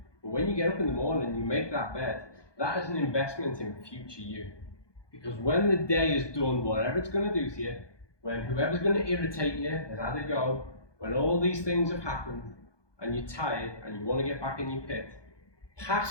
But when you get up in the morning and you make that bed, that is an investment in future you. Because when the day is done, whatever it's going to do to you, when whoever's going to irritate you has had a go, when all these things have happened, and you're tired and you want to get back in your pit,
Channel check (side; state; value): right; late; 1.2 ms